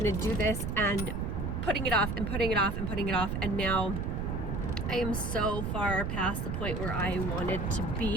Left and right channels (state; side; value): noise; right; rumble, 2 dB below the sound